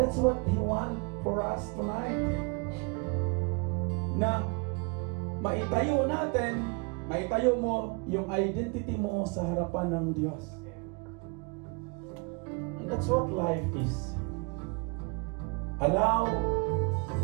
what He wants for us tonight. Na maitayo natin, maitayo mo yung identity mo sa harapan ng Diyos. And that's what life is. Allow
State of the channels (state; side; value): quieter; left; 31.7 dB